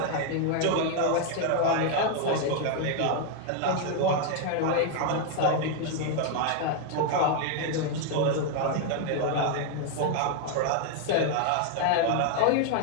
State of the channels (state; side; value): different; both; correlation 0.00